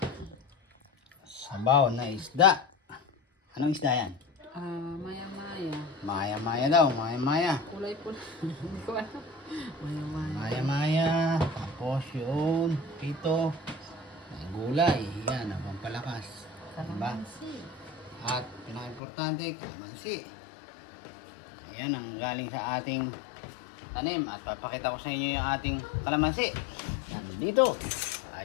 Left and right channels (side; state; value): right; drops out; at 19.0 s